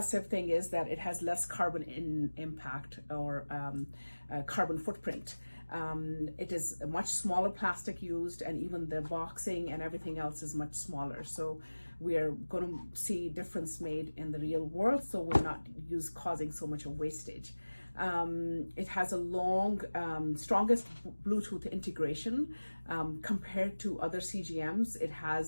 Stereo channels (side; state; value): both; inverted; correlation -1.00